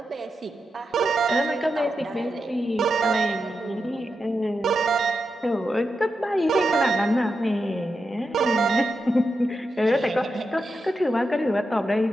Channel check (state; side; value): normal; both; correlation 0.87